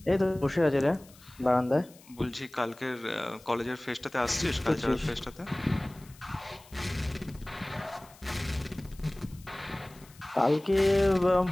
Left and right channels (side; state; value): left; noise; hiss, 24 dB below the sound